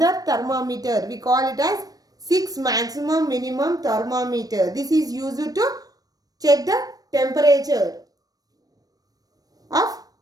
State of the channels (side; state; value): left; late; 0.18 ms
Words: thermometer. We call it as 6 maximum minimum thermometer. This is used to check the temperature of